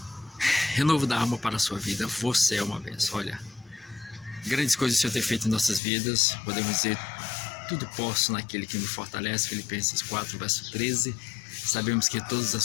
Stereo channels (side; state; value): right; drops out; at 5.8 s